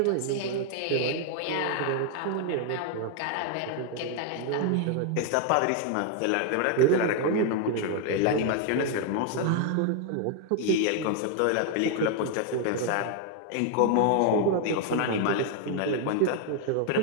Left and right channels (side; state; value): both; different; correlation 0.00